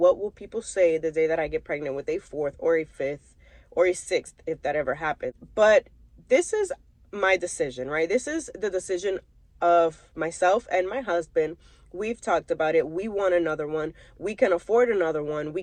will people say the day that I get pregnant with a 4th or a 5th or a 6th, if that ever happens. But this is my decision, right? This is the decision of myself and my husband. We've talked about it. We want another one. We can afford another one. We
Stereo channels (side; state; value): both; identical; correlation 1.00